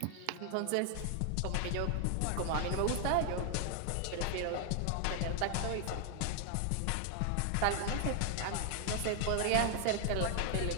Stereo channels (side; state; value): both; different; correlation 0.00